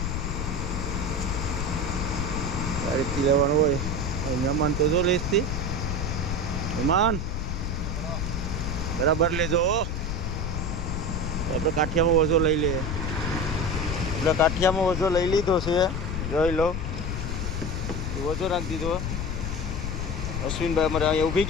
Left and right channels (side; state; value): left; noise; rumble, 2 dB below the sound